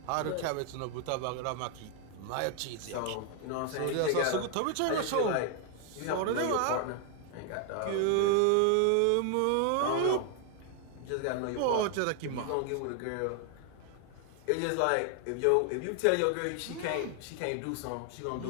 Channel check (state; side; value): different; both; correlation 0.00